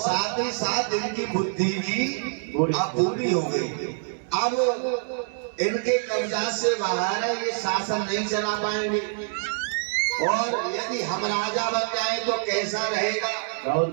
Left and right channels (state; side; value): silent; left; digital silence